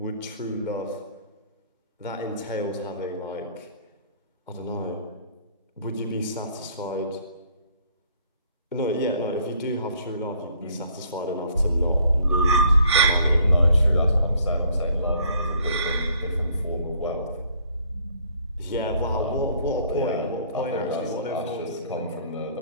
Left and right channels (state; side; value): inverted; both; correlation -0.61